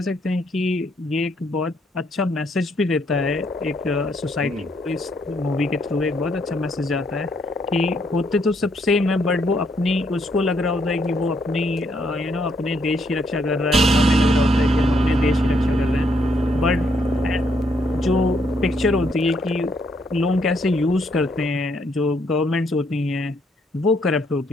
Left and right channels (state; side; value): normal; both; correlation 0.72